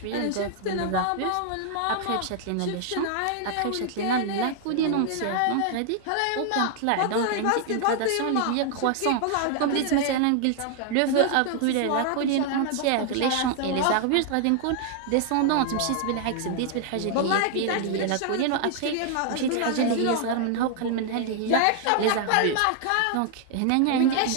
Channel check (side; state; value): both; different; correlation 0.00